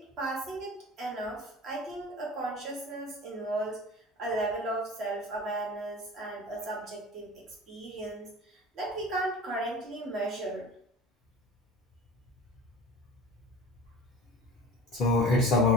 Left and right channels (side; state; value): both; normal; correlation 0.38